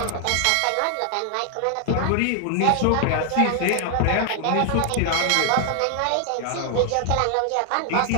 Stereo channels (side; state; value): both; different; correlation 0.00